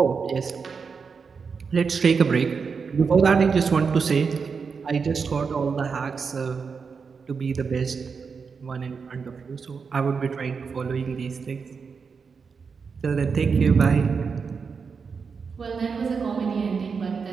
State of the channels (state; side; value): quieter; left; 5.5 dB